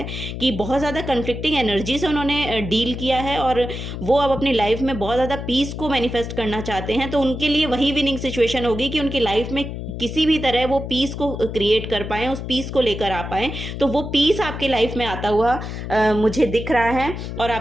कि बहुत ज़्यादा कन्फ्लिक्टिंग एनर्जी से उन्होंने डील किया है और वो अब अपनी लाइफ में बहुत ज़्यादा पीस को मैनिफेस्ट करना चाहते हैं। तो उनके लिए वही विनिंग सिचुएशन होगी कि उनकी लाइफ में किसी भी तरह वो पीस को क्रिएट कर पाएँ, उस पीस को लेकर आ पाएँ। तो वो पीस आपके लाइफ में आता हुआ मुझे दिख रहा है और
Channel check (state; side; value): noise; left; hum, 7 dB below the sound